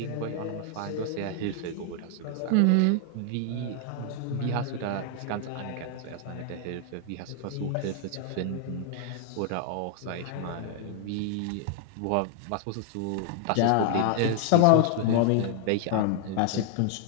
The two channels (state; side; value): different; both; correlation 0.00